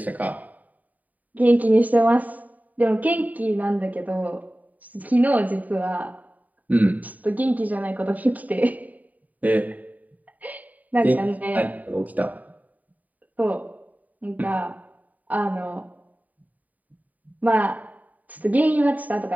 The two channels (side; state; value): left; late; 0.075 ms